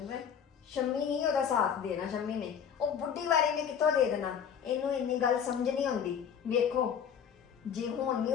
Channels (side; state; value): right; quieter; 7.9 dB